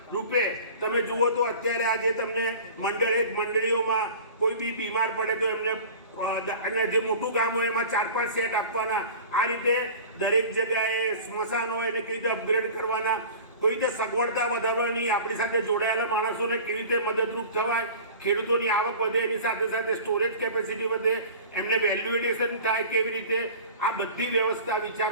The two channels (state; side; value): inverted; both; correlation -0.39